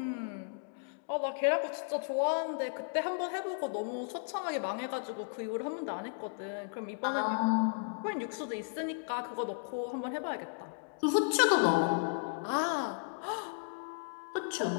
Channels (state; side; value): quieter; right; 39.4 dB